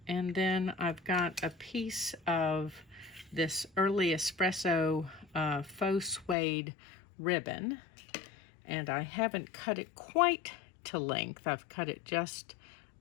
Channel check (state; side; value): drops out; right; at 6.4 s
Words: And then I've got a piece of this Early Espresso faux suede ribbon, and I haven't cut it quite to length. I've cut it just